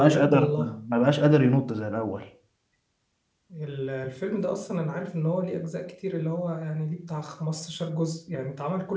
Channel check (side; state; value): both; identical; correlation 1.00